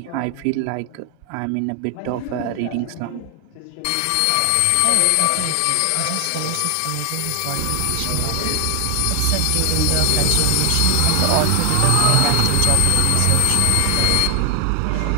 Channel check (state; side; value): different; both; correlation 0.00